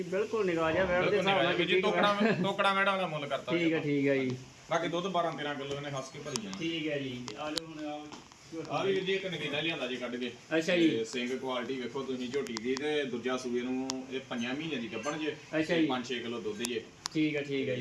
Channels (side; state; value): both; identical; correlation 1.00